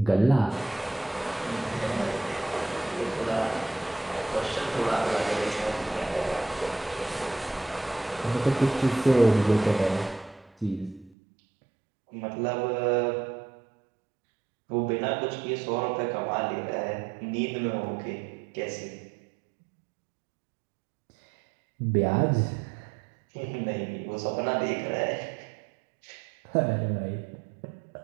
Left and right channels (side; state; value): left; drops out; at 11.1 s